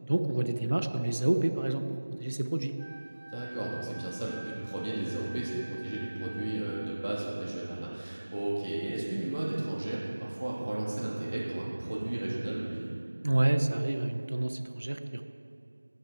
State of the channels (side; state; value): both; inverted; correlation -1.00